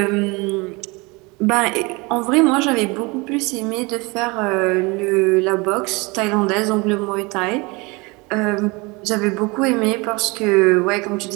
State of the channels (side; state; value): left; quieter; 26.3 dB